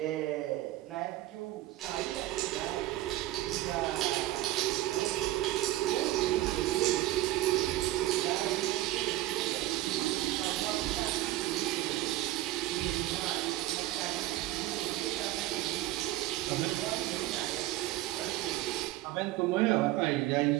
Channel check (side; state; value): left; quieter; 16.0 dB